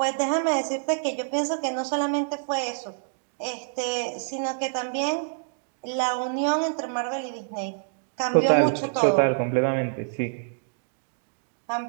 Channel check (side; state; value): left; silent; digital silence